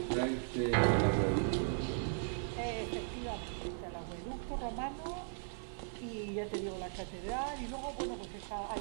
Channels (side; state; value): left; silent; digital silence